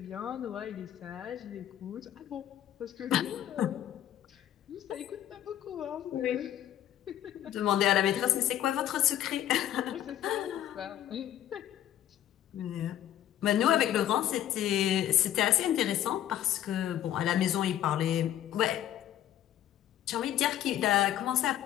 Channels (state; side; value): quieter; right; 11.8 dB